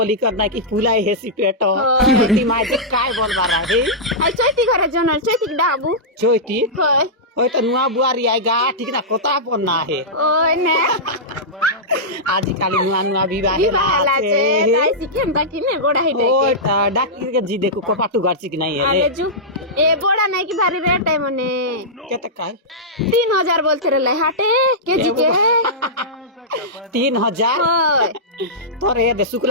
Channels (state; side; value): normal; both; correlation -0.13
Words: करना कि फुलाई हेसी पेटो हाँ। ती माय जे काय बोल बारा हे আই চৈতি ঘরে জনল চৈতি ডাবু चोइती হয় होय तो नुआ बुआरी आएगा ठीक ना कोता पन्ना है ওই নে आज काली नुआ विवाह বিবাহলা আছে তাই শিখেন তা কিনে বড়া হিটে ओय डाकी के जी देखो कोपाटू गर्ची कि नहीं है আরে জু এ বড়া নাই কি ভারী রেট है মনে केते काय 3000 बोलते रे हाटे केजी के 3000 হয় तोरे दे